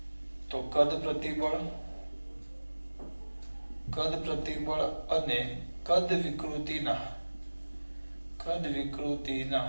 તો કદ પ્રતિબળ અને કદ વિકૃતિના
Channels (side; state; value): both; inverted; correlation -1.00